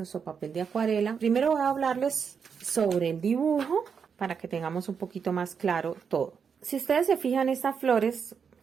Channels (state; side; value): quieter; left; 6.5 dB